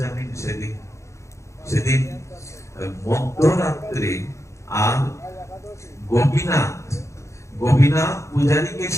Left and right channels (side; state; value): right; late; 0.14 ms